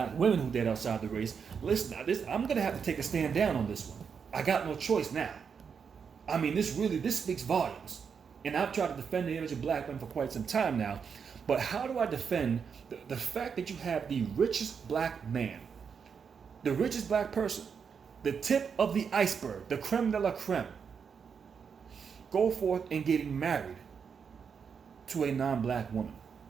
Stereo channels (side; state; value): left; quieter; 6.5 dB